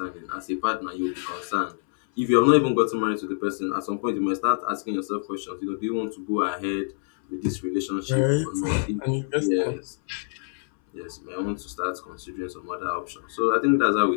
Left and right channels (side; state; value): right; silent; 61 dB below the other